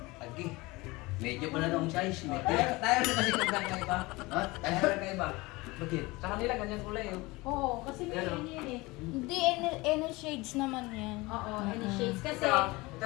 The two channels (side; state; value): right; quieter; 22.5 dB